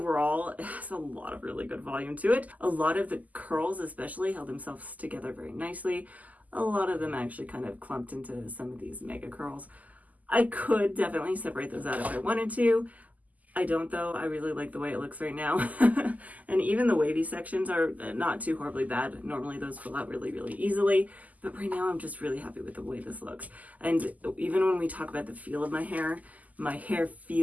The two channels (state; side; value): late; left; 0.078 ms